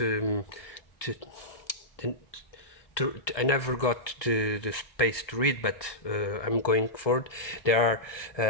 I never got the space to read, but I'm going forward. There are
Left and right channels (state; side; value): late; right; 1.2 ms